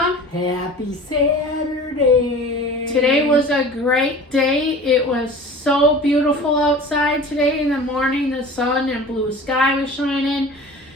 Happy Saturday. Today was a great day. It was so beautiful outside today in the morning. The sun and blue sky was shining,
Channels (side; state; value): both; normal; correlation 0.40